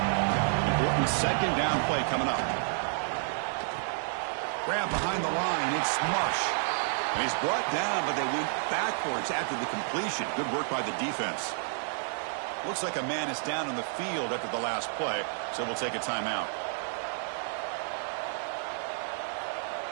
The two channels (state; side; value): silent; left; 58 dB below the other